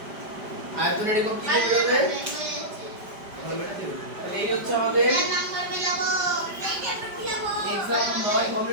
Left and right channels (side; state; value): left; late; 5.1 ms